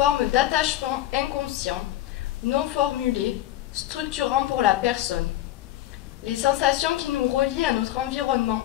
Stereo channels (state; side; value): quieter; right; 14.0 dB